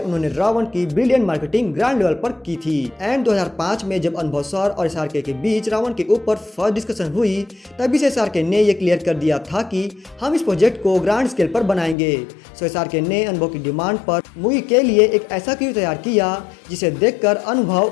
रावण की ब्रिलियंट मार्केटिंग ग्रैंड लेवल पर की थी। एंड 2005 में जब अनुभव सर और SRK के बीच रावण के ऊपर फर्स्ट डिस्कशन हुई, तभी से SRK ने यह क्लियर कर दिया था कि हम इस प्रोजेक्ट को ग्रैंड स्केल पर बनाएंगे। सो SRK ने अनुभव की डिमांड पर मूवी के लिए एक ऐसा क्रू तैयार किया जिसे देखकर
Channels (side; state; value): right; drops out; at 12.0 s